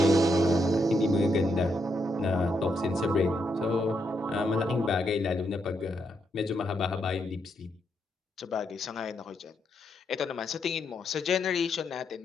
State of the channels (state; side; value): normal; both; correlation 0.80